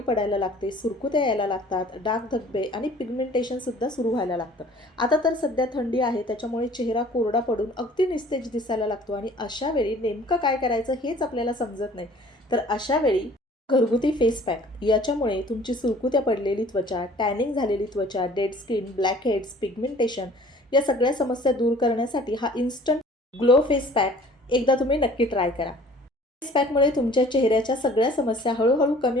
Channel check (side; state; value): both; normal; correlation 0.51